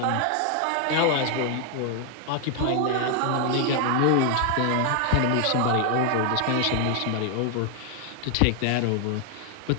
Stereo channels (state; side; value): different; both; correlation 0.00